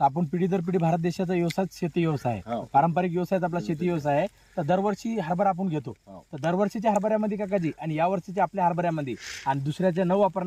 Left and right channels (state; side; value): identical; both; correlation 1.00